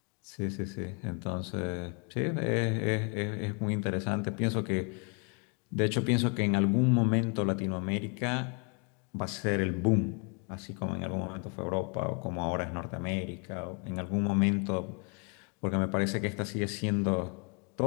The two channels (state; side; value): quieter; right; 36.5 dB